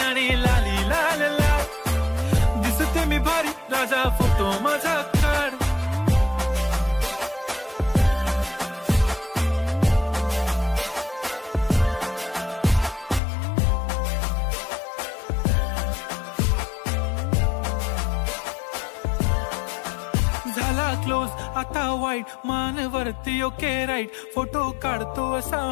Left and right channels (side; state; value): right; drops out; at 13.2 s